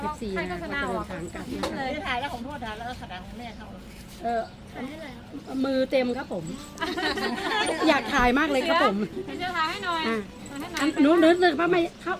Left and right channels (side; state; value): both; identical; correlation 1.00